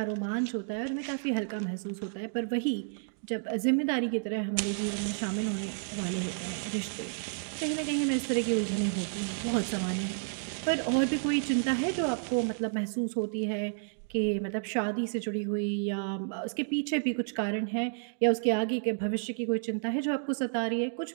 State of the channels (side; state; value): left; silent; digital silence